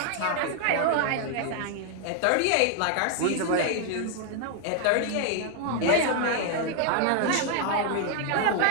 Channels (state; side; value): different; both; correlation 0.00